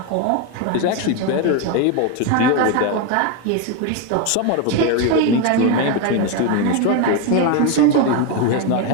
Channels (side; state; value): both; different; correlation 0.02